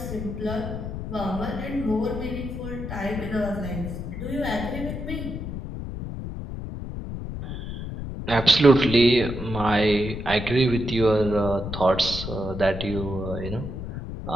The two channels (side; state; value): left; noise; rumble, 7 dB below the sound